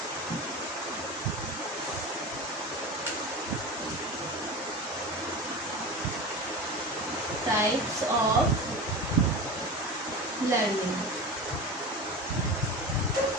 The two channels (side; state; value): both; normal; correlation 0.28